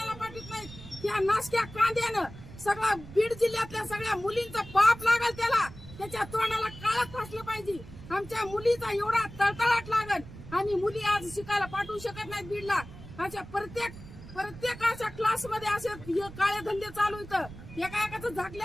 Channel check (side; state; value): right; noise; rumble, 15 dB below the sound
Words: पाठवित नाहीत. त्या नाशक्या कांद्यानं सगळा बीड जिल्ह्यातल्या सगळ्या मुलींचा पाप लागल त्याला त्याच्या तोंडाला काळच फासलं पाहिजे. आमच्या मुलीचा एवढा तळतळाट लागल आणि मुली आज शिकायला पाठवू शकत नाहीत बीडला. अशा प्रत्येक अशा क्लास मध्ये असे काळे धंदे चालू इथं एका एकाचं